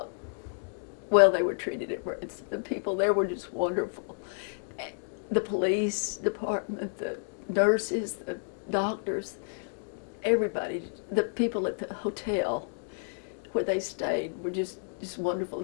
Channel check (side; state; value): right; silent; digital silence